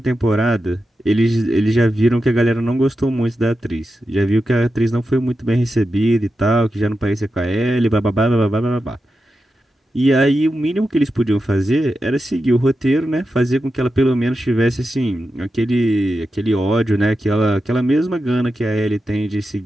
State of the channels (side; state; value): both; normal; correlation 0.90